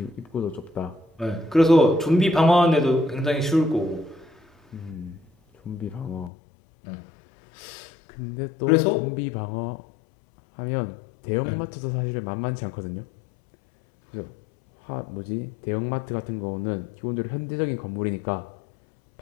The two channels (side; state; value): right; drops out; at 6.3 s